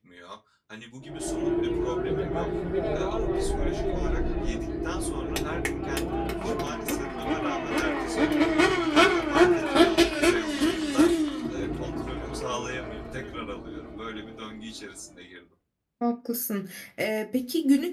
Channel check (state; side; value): identical; both; correlation 1.00